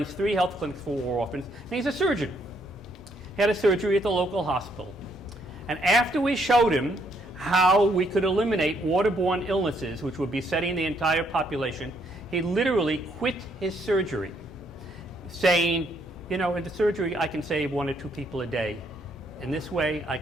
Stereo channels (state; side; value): normal; both; correlation 0.71